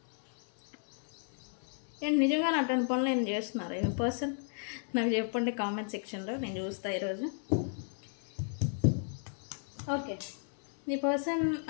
ఏంటి నిజంగా అటువంటి పనులు ఏం చేస్తున్నారు ఈ పర్సన్? నాకు చెప్పండి కామెంట్ సెక్షన్లో, నేను చూస్తాను ఈరోజు. Okay, the person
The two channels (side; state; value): right; silent; 55 dB below the other